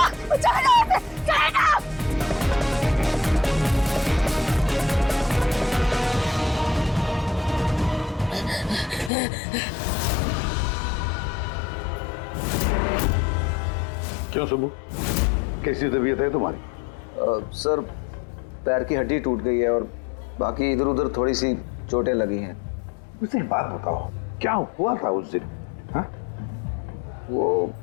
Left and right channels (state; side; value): drops out; right; at 9.1 s